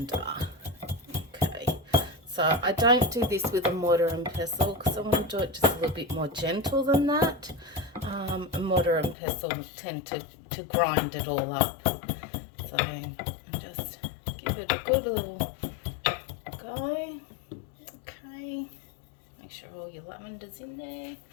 Okay, so I don't do this with a mortar and pestle because I want to do it just a little bit more gentle than that. A mortar and pestle tend to grind it all up. So I just give it a good little go. Okay, make sure all your lavender's in there,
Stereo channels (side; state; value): right; drops out; at 9.2 s